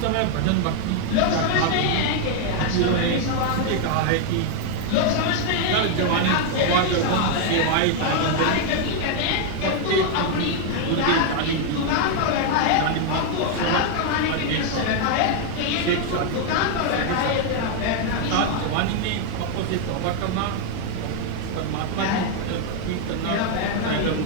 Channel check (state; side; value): different; both; correlation 0.00